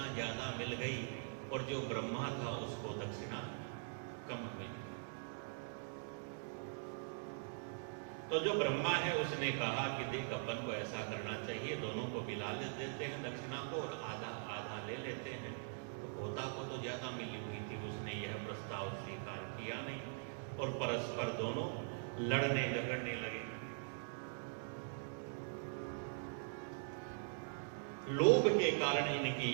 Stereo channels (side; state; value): left; silent; digital silence